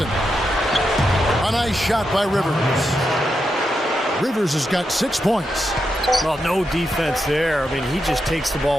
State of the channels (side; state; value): both; normal; correlation 0.86